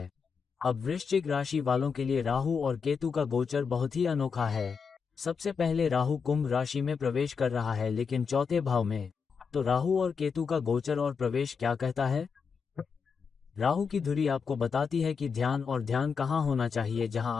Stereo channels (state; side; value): quieter; right; 5.8 dB